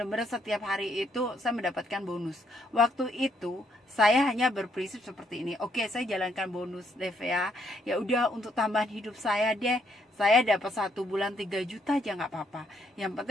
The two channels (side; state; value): both; normal; correlation 0.72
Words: setiap hari itu saya mendapatkan bonus. Waktu itu saya hanya berprinsip seperti ini, oke saya jalankan bonus Levea, ya udah untuk tambahan hidup saya deh, saya dapat 1 bulan 3 juta aja nggak apa-apa, yang